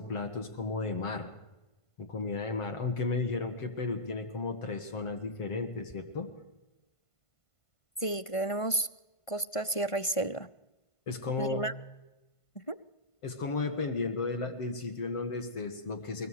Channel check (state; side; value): late; right; 1.5 ms